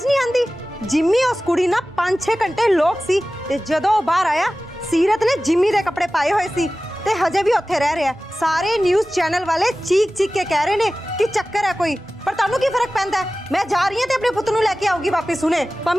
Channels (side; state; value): both; normal; correlation 0.96